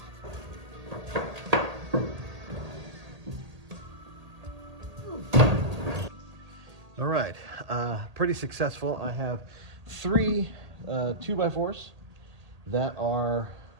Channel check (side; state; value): left; late; 1.8 ms